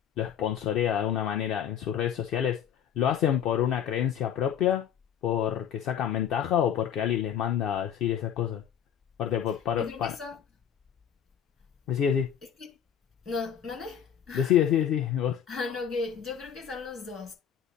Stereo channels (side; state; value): right; quieter; 9.1 dB